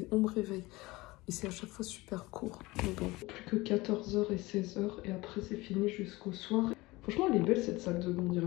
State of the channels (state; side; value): quieter; right; 21.1 dB